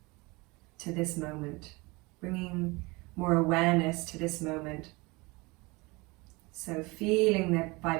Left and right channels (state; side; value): quieter; left; 24.7 dB